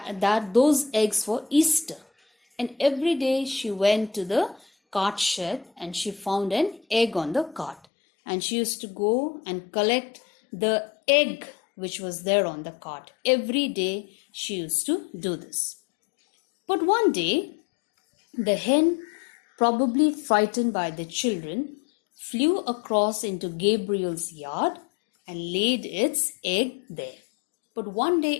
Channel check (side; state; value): right; drops out; at 7.9 s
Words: eggs for Easter. And every day she went to the cart shed and she found an egg on the cart. And she used to go and collect the egg which was there on the cart. Every day she used to do this. But one day, the hen, probably frightened by the children, flew across into Gabriel's yard and laid its egg there. But one day